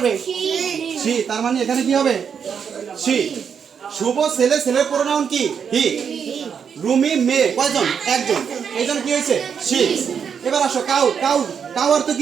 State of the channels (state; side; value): quieter; left; 7.1 dB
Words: সি, তার মানে এখানে কি হবে? সি। শুভ ছেলে, ছেলের প্রোনাউন কি? হি। রুমি মেয়ে কয়জন? একজন, এই জন্য কি হয়েছে? সি। এবার আসো কাউ। কাউ কাউ অর্থ